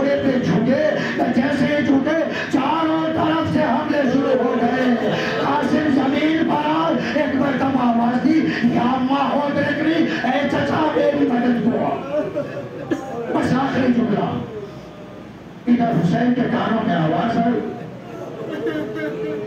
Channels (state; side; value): identical; both; correlation 1.00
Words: پہ جھکے. جیسے ہی جھکے چاروں طرف سے حملے شروع ہو گئے. قاسم زمین پر آئے. ایک مرتبہ آواز دی یا اماں ہو دیکھنی اے چچا میری مدد کو. بس آخری جملہ. ادھر حسین کے کانوں میں آواز آئی